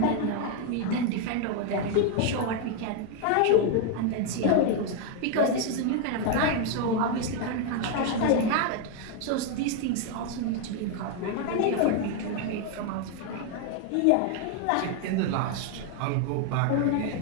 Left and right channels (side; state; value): both; different; correlation 0.01